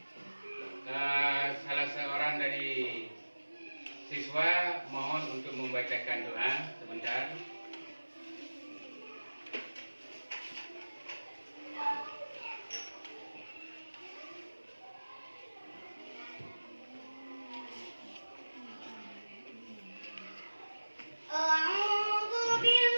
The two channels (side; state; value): both; inverted; correlation -1.00